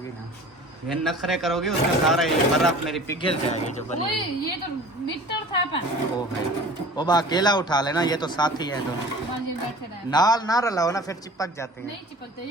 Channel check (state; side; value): normal; both; correlation 0.43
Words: ना। ये नखरे करोगे उसका सारा ये बर्फ मेरी पिघल जाएगी जो बनी ओए, हुई। ये तो मीटर था पर। ओ है, ओ बा अकेला उठा लेना, ये तो साथी है दोनों। हाँ जी, बैठे रहे। नाल ना रलाओ ना, फिर चिपक जाते हैं। नहीं चिपकते,